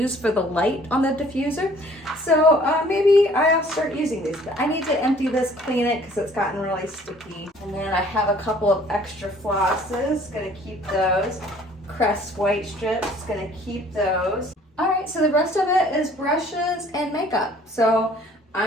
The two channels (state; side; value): normal; both; correlation 0.55